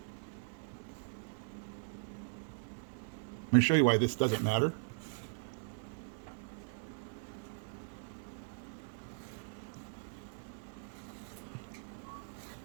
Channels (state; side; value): silent; left; digital silence